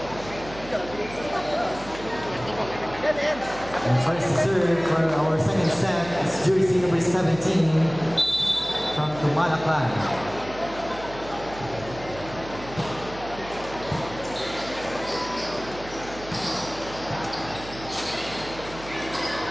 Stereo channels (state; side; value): noise; right; hum, 15 dB below the sound